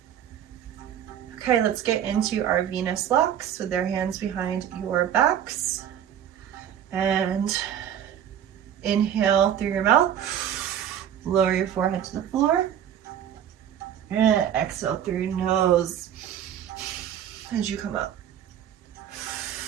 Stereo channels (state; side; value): quieter; left; 9.8 dB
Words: Okay, let's get into our Venus locks with their hands behind your backs. And inhale through your mouth, lower your forehead to the floor. And exhale through your nose as you come up.